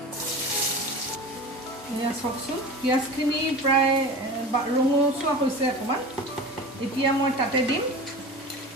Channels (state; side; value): normal; both; correlation 0.33